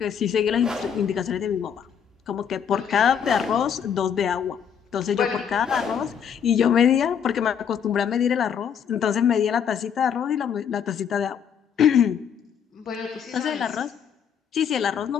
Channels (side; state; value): right; quieter; 7.9 dB